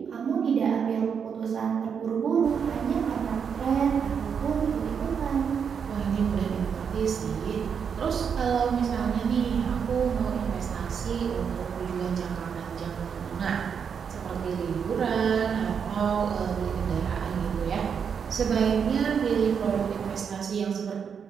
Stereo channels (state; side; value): quieter; left; 6.9 dB